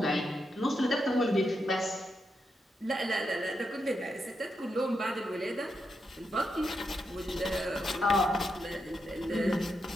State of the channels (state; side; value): normal; both; correlation 0.84